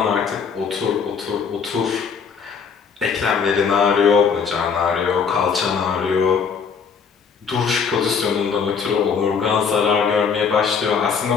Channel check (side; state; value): right; quieter; 6.1 dB